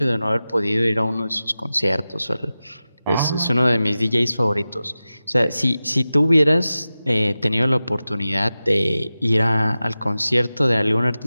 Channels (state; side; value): inverted; both; correlation -0.94